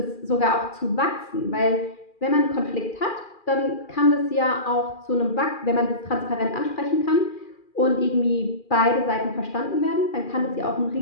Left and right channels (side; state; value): right; late; 2.4 ms